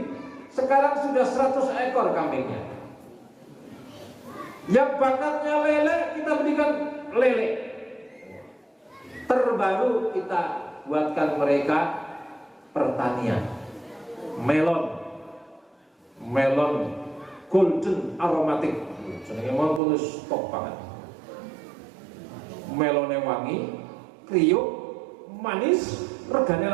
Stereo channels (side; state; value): left; drops out; at 19.8 s